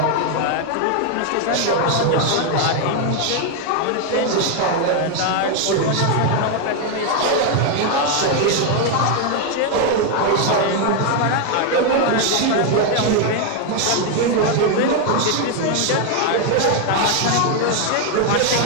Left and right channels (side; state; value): both; different; correlation 0.01